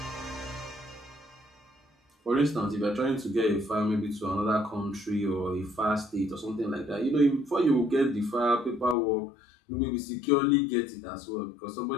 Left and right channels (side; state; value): right; drops out; at 9.0 s